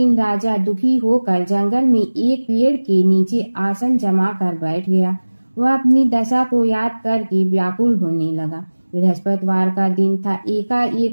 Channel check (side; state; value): both; inverted; correlation -1.00